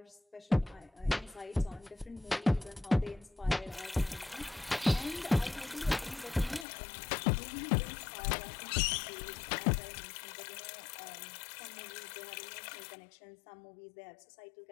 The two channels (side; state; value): right; drops out; at 6.7 s